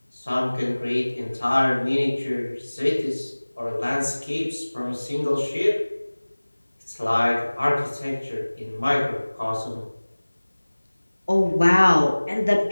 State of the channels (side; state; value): both; inverted; correlation -1.00